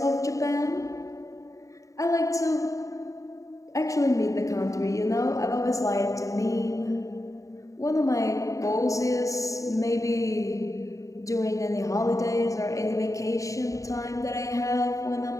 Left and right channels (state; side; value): late; right; 0.16 ms